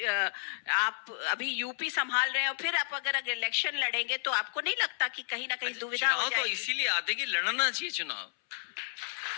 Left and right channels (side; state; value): right; silent; 57 dB below the other